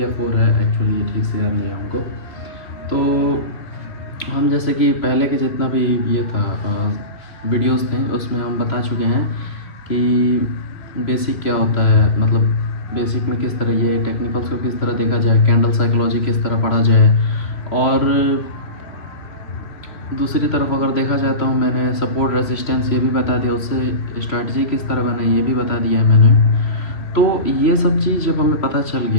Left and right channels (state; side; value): late; right; 2.8 ms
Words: 4 है, एक्चुअली ये ठीक से याद नहीं है हमको। तो हम जैसे कि पहले के जितना भी ये था वीडियोस थे उसमें हम बता चुके हैं कि बेसिक क्या होता है, मतलब बेसिक में किस तरह ये टेक्निकल्स को किस तरह देखा जाए, कैंडल साइकोलॉजी किस तरह पढ़ा जाए, और दूसरी तरफ अगर देखा जाए तो मैंने सपोर्ट रेसिस्टेंस ये भी बता दिया, उससे स्ट्रैटेजी किस तरह बनाई ये भी बता दिया है मैंने। तो ये सब चीज़ जब हमें पता चल